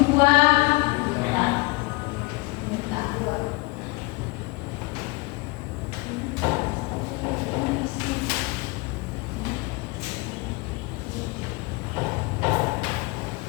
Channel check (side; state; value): right; quieter; 26.0 dB